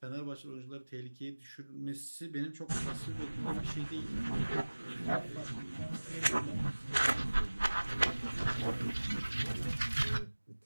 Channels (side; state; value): both; inverted; correlation -1.00